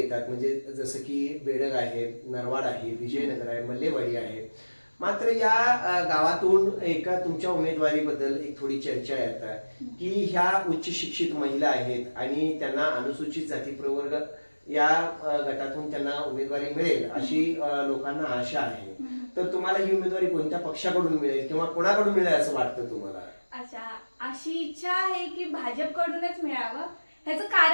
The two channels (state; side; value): inverted; both; correlation -1.00